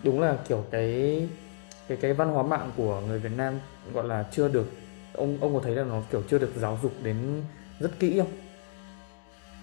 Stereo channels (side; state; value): right; silent; digital silence